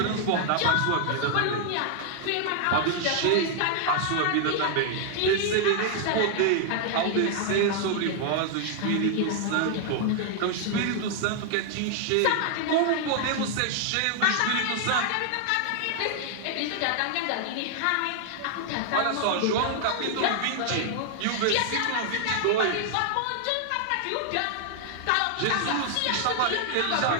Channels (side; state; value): both; different; correlation 0.00